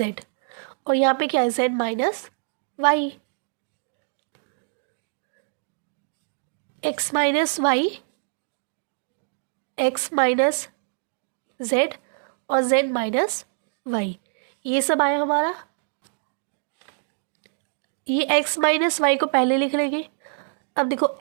और यहाँ पे क्या है, Z minus Y, X minus Y, X minus Z और जेड माइनस वाई, ये सब आया हमारा। ये एक्स माइनस वाई को पहले लिख लेंगे। अब देखो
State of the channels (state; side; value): silent; left; digital silence